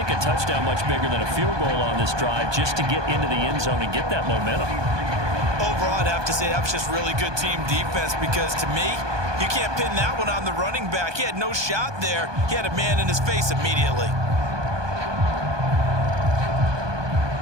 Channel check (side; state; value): left; late; 1.2 ms